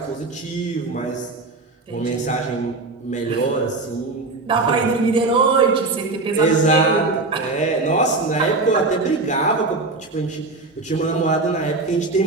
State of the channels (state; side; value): quieter; left; 3.4 dB